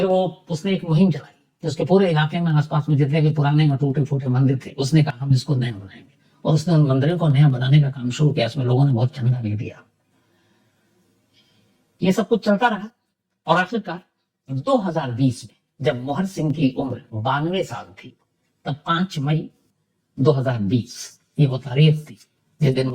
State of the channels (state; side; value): identical; both; correlation 1.00